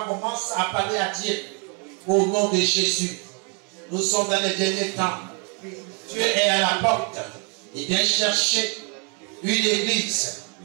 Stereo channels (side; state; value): left; quieter; 36.2 dB